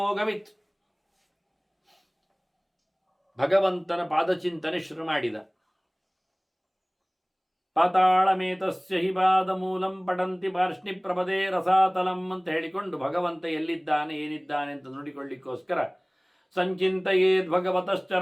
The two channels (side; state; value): both; identical; correlation 1.00